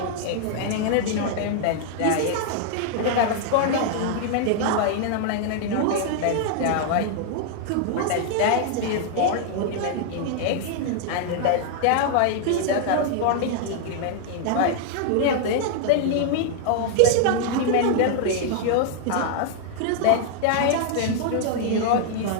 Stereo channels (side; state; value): both; different; correlation -0.01